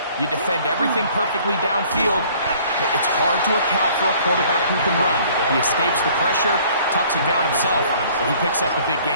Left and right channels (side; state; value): both; inverted; correlation -0.55